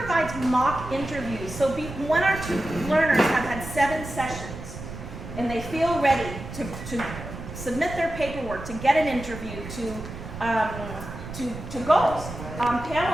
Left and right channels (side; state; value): right; noise; rumble, 10 dB below the sound